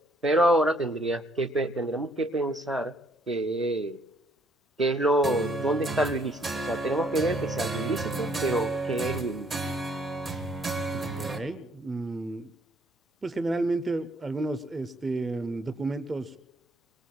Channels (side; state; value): both; normal; correlation 0.66